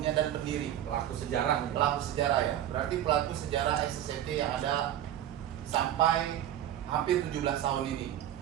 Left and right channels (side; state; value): left; quieter; 11.5 dB